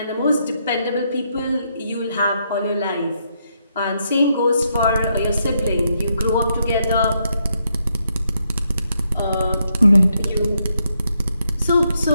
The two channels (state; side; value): inverted; both; correlation -0.78